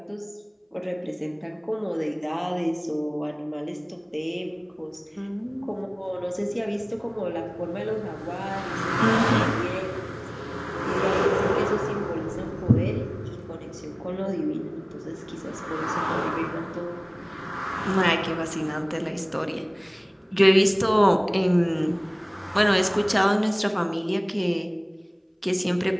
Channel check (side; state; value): both; identical; correlation 1.00